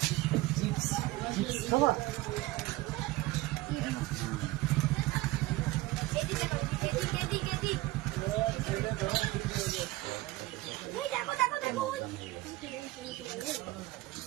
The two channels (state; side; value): quieter; left; 19.2 dB